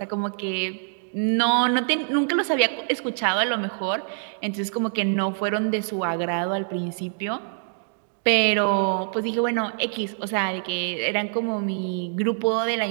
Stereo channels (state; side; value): silent; left; digital silence